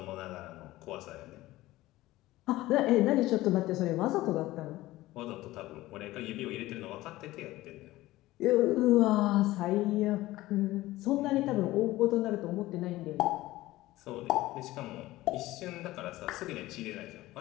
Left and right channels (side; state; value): right; quieter; 17.3 dB